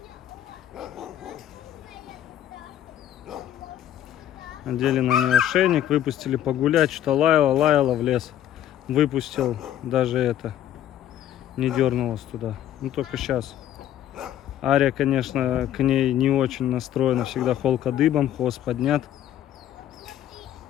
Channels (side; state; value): right; quieter; 11.4 dB